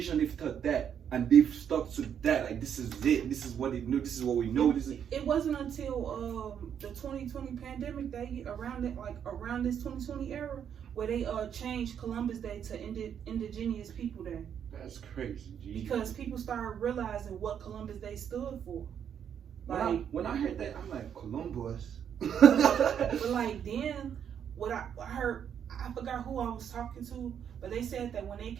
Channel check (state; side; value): quieter; left; 8.5 dB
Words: they've taught that and they've stuck to that. Like, this is it. This is what they know. This is what we know. It wasn't until the 2020 pandemic around this 2020 era where they changed Columbus Day to Indigenous People Day. That's crazy, G. Because people started realizing what Columbus Day stood for. Like, when I heard that, I'm like, Columbus. But like then, what I heard, I forgot who I was talking to, but they said that when they